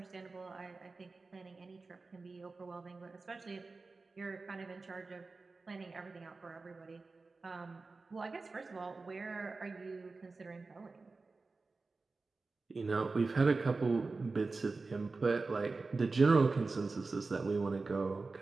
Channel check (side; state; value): left; quieter; 3.8 dB